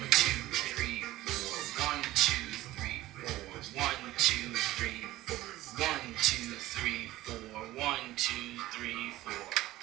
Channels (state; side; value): quieter; left; 16.5 dB